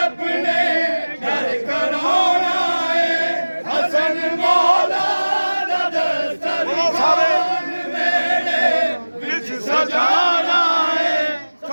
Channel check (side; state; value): both; inverted; correlation -1.00